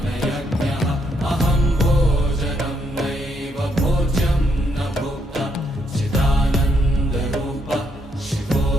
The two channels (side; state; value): both; normal; correlation 0.75